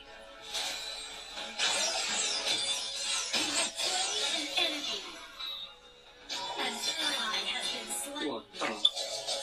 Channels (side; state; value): both; identical; correlation 1.00